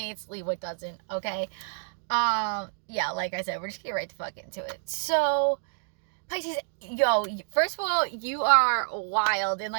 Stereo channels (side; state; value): left; silent; digital silence